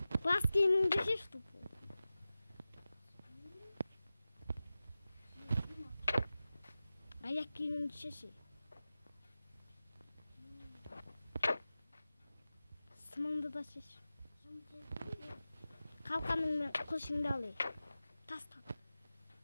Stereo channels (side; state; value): both; inverted; correlation -0.95